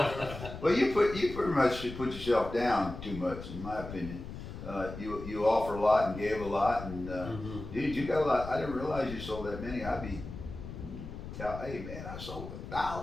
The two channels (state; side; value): noise; left; rumble, 10 dB below the sound